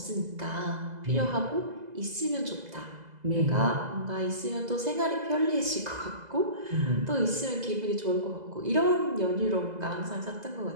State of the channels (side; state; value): left; late; 2.0 ms